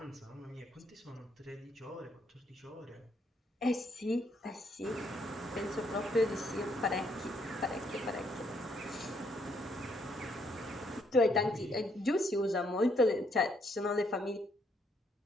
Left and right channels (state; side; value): normal; both; correlation 0.71